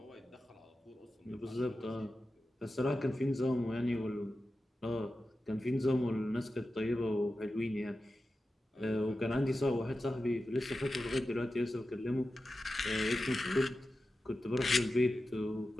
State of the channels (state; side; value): normal; both; correlation 0.93